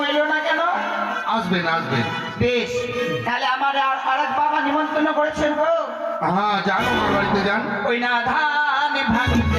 এলো না কেন? আসবেন আসবেন। বেশ, তাহলে আমার আরেক বাবা নিমন্ত্রণ করেছেন গো। হ্যাঁ, যান আমার বাড়িতে যান। ওই না ধান ভাঙিতে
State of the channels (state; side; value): identical; both; correlation 1.00